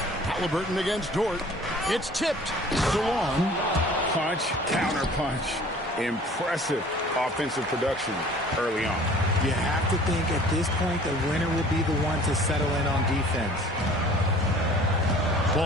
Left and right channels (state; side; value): normal; both; correlation 0.49